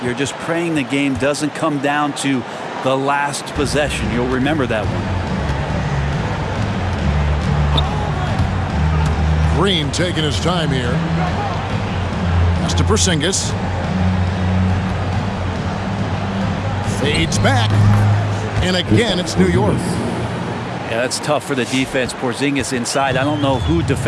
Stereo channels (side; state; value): both; identical; correlation 1.00